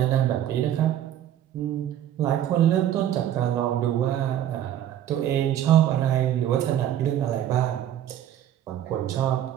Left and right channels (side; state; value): left; quieter; 11.2 dB